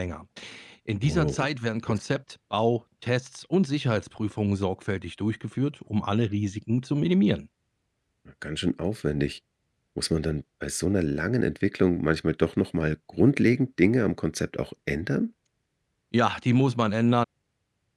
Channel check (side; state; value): both; identical; correlation 1.00